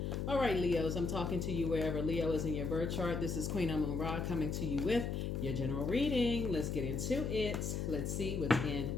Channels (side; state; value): left; noise; hum, 1 dB below the sound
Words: All right, Leos, I'm talking to you wherever Leo is in your birth chart. This is Queen Amun Ra coming to you with your general reading. Let's get into it. Let's see what's in